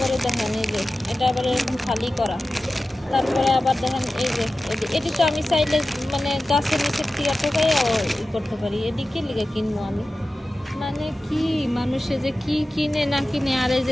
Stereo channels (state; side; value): normal; both; correlation 0.95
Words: দেখেন এই যে এটা আবার এরকম খালি করা। তারপরে আবার দেখেন এই যে এটি তো আমি চাইলে মানে গাছের নিচের টিয়া টোকাইও করতে পারি। এদিকে লিগে কিনবো আমি? মানে কি মানুষে যে কি কিনে না কিনে। আর এই